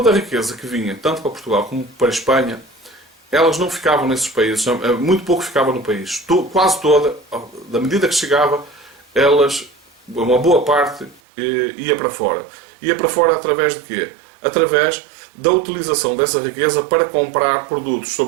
a riqueza que vinha, tanto para Portugal como para a Espanha, elas não ficavam nesses países, muito pouco ficava no país. Quase toda, da medida que chegava, uma boa parte ia para fora. Ia para fora através de quê? Através da utilização dessa riqueza para comprar produtos,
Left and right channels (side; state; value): left; drops out; at 11.2 s